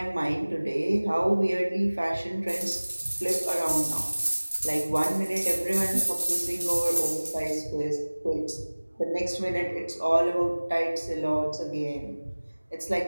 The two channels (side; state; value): both; inverted; correlation -1.00